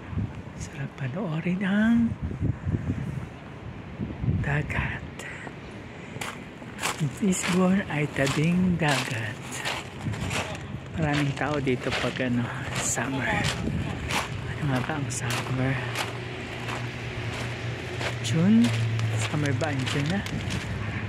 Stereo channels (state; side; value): identical; both; correlation 1.00